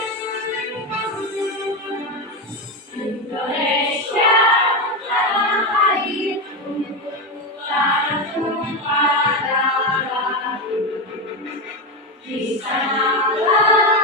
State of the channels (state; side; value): normal; both; correlation 0.13